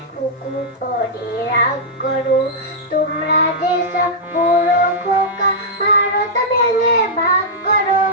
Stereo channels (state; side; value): normal; both; correlation -0.10